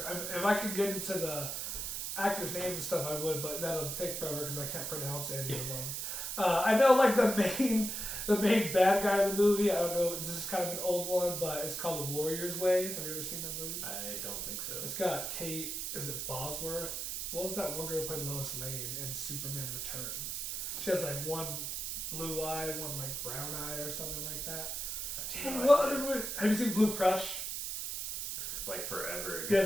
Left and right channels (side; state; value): right; noise; hiss, 4 dB below the sound